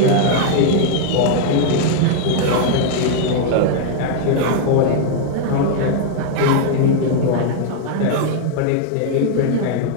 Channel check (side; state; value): both; different; correlation -0.01